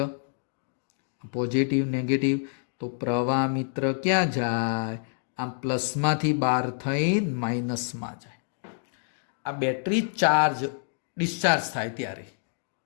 પોઝિટિવ નેગેટિવ, તો પ્રવાહ મિત્ર ક્યાં જાય? આ પ્લસમાંથી બહાર થઈ માઇનસમાં જાય. આ બેટરી ડિસ્ચાર્જ થાય ત્યારે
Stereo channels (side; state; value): right; silent; digital silence